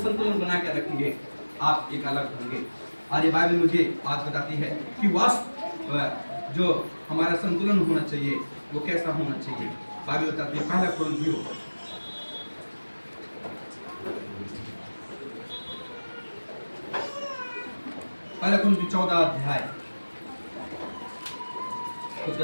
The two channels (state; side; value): inverted; both; correlation -1.00